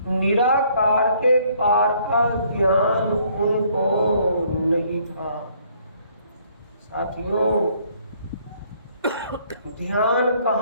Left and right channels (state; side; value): inverted; both; correlation -0.64